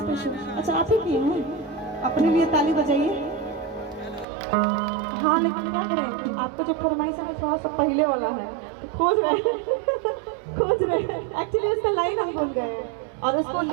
अच्छा आप ही किए हैं, अपने लिए ताली बजाइए। हाँ लेकिन क्या करें, आपका जो फरमाइश है थोड़ा सा पहले वाला है, तो खोज रहे एक्चुअली उसका लाइन हम भूल गए और उसको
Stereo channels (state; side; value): drops out; left; at 4.2 s